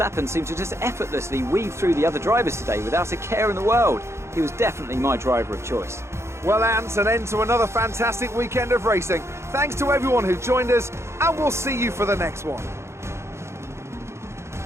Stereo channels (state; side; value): late; left; 0.13 ms